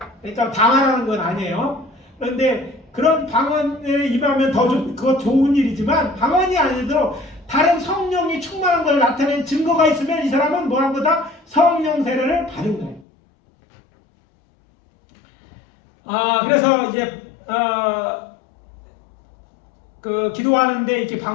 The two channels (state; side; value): drops out; right; at 13.1 s